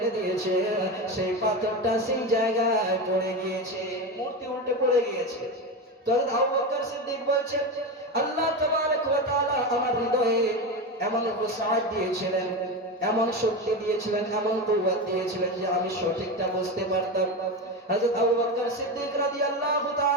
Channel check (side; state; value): both; normal; correlation 0.19